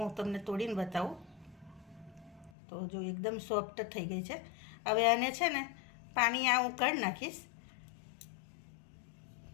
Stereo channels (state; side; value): drops out; right; at 2.5 s